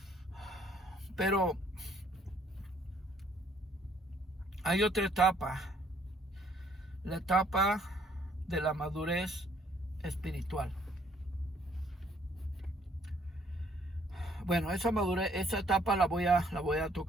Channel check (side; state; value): both; normal; correlation 0.64